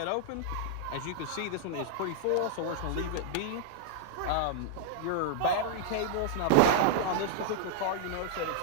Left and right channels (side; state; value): both; different; correlation -0.01